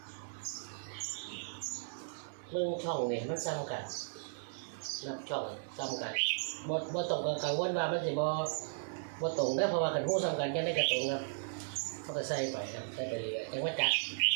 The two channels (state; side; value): silent; left; digital silence